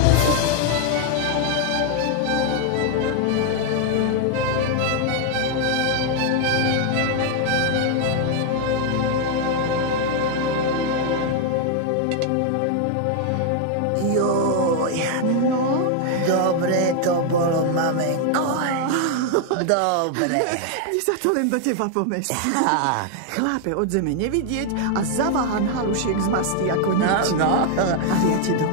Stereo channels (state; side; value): different; both; correlation 0.00